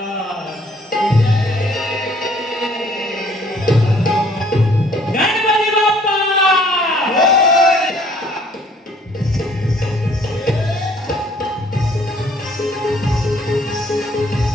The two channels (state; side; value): normal; both; correlation 0.59